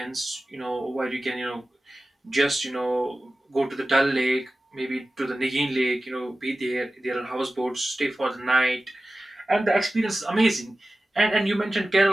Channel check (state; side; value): normal; both; correlation 0.95